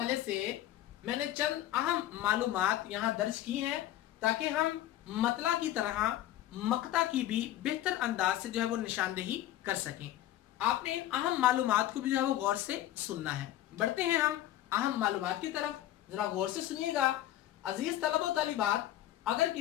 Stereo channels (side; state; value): right; quieter; 13.4 dB